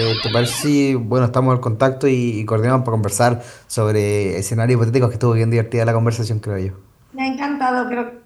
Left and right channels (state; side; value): identical; both; correlation 1.00